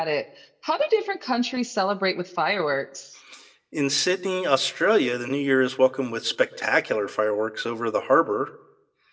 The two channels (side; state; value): both; identical; correlation 1.00